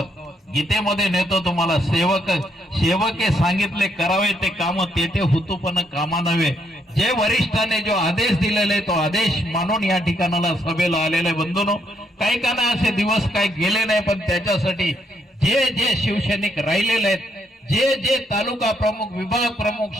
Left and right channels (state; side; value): normal; both; correlation 0.74